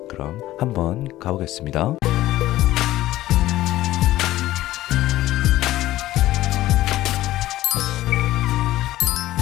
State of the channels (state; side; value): quieter; right; 15.3 dB